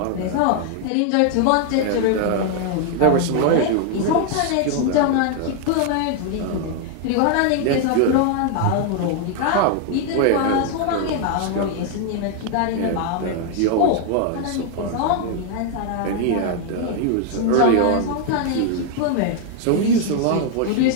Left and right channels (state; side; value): different; both; correlation 0.00